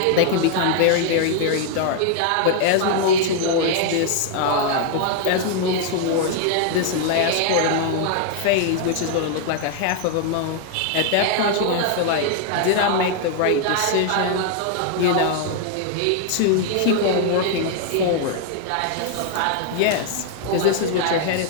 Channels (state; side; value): different; both; correlation 0.00